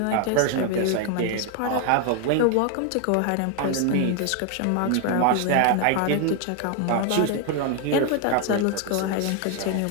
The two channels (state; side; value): different; both; correlation 0.01